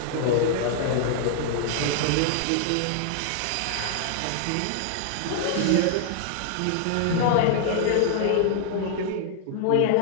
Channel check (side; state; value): both; different; correlation 0.00